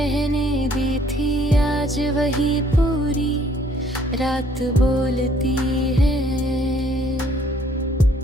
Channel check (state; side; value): normal; both; correlation 0.61